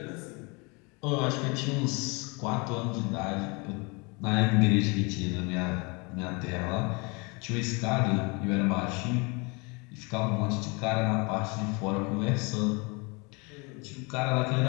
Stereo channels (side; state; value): right; quieter; 29.5 dB